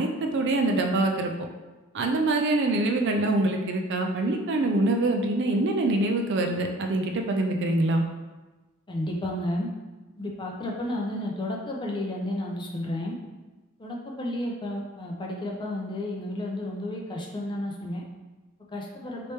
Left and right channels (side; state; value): both; normal; correlation 0.52